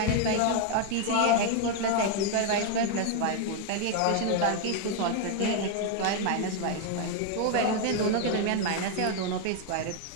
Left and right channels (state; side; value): different; both; correlation 0.01